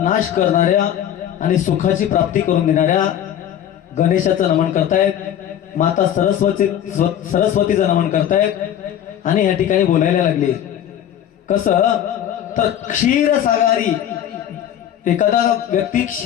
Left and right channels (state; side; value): quieter; right; 10.4 dB